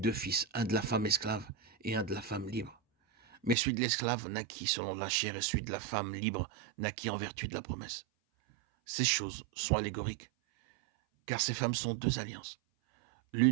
fils, un de la femme esclave et un de la femme libre. Mais celui de l'esclave naquit selon la chair et celui de la femme libre naquit en vertu de la promesse. Ces choses sont allégoriques, car ces femmes sont 2 alliances.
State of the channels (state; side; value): drops out; left; at 3.6 s